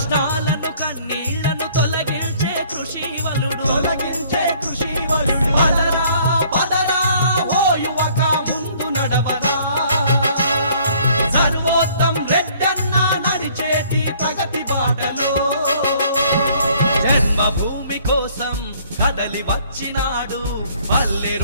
కన్నీళ్లను తొలగించే కృషివలుడు పదరా పదరా ఓ యువక ముందు నడవరా సర్వోత్తం రెడ్డన్న నడిచేటి ప్రగతి బాటలో జన్మభూమి కోసం కదలి వచ్చినాడు పల్లె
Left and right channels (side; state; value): both; inverted; correlation -0.59